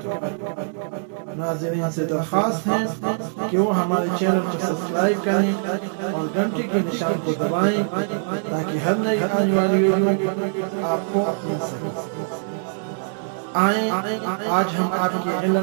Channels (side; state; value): left; silent; digital silence